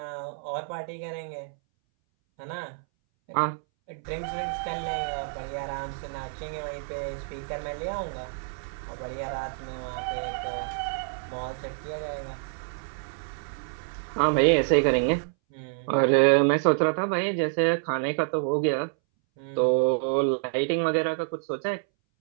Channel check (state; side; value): silent; left; 59 dB below the other